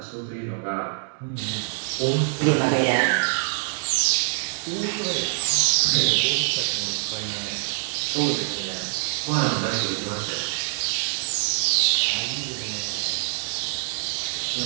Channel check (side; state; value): left; silent; digital silence